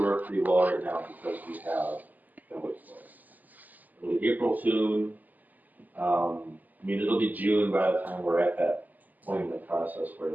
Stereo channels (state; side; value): late; left; 0.082 ms